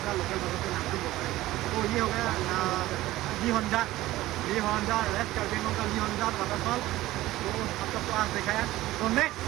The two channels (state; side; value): quieter; left; 16.5 dB